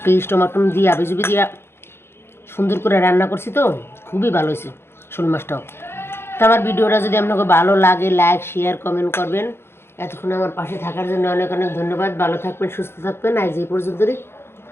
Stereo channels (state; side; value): late; right; 0.12 ms